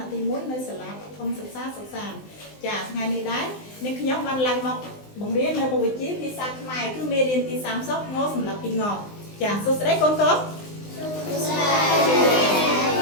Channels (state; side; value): late; right; 19 ms